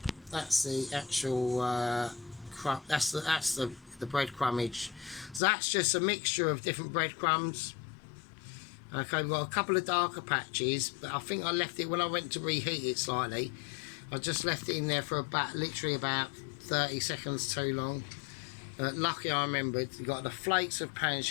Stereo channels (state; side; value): drops out; right; at 5.4 s